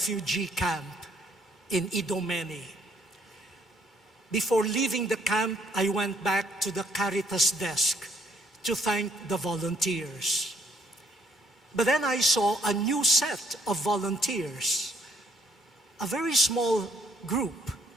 camp in Idomeni. Before leaving the camp, I went back to the Caritas desk to thank the volunteers. But then I saw a new set of volunteers, a very small group,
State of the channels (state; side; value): normal; both; correlation 0.67